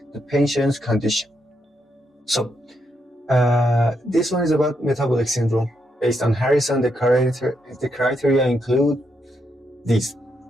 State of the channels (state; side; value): normal; both; correlation 0.80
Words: the patient's condition? So, this one is about metabolic syndrome. Based on Harrison, the criteria include these: